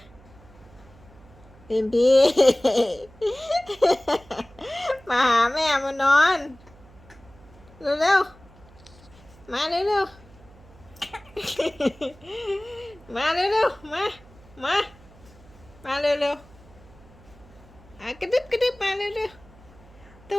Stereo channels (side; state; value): right; noise; hum, 24 dB below the sound